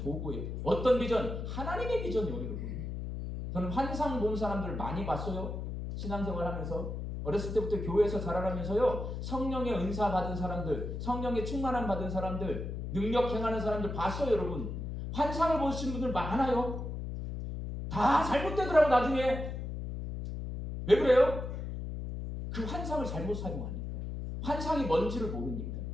어떤 비전? 하나님의 비전이요, 여러분. 저는 환상 본 사람들 많이 봤어요. 신앙생활 하면서. 어렸을 때부터 교회에서 자라나면서요. 성령의 은사 받은 사람들, 성령의 충만함 받은 사람들, 능력 행하는 사람들 봤어요, 여러분. 환상을 보신 분들 많아요. 다 잘못되더라고 나중에. 왜 그래요? 그 환상을 잘못 사용하니까. 환상이 뭔지를 모르니까.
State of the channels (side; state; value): left; noise; hum, 5 dB below the sound